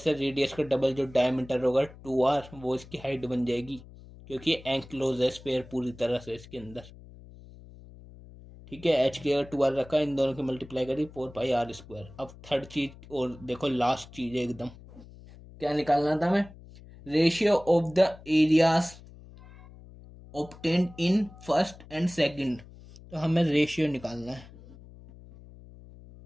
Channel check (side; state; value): left; noise; hum, 19 dB below the sound